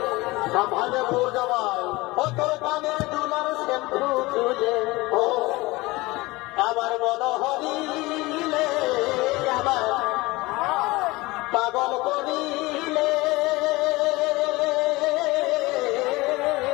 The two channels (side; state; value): right; quieter; 21.6 dB